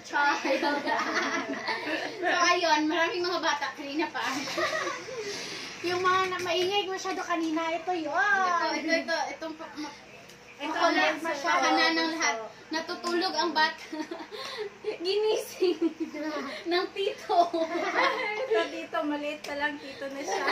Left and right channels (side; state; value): both; identical; correlation 1.00